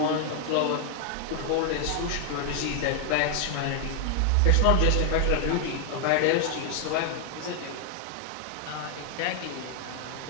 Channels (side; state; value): both; different; correlation 0.00